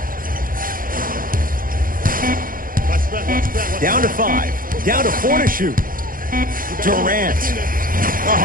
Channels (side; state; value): left; late; 0.41 ms